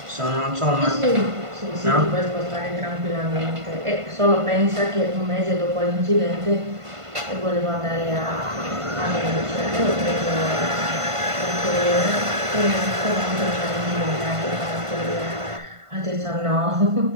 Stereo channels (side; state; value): left; late; 1.5 ms